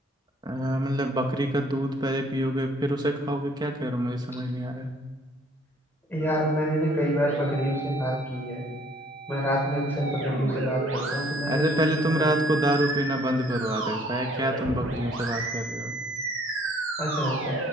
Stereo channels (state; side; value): normal; both; correlation 0.60